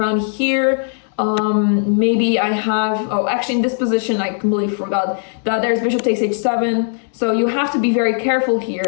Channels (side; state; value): right; silent; 64 dB below the other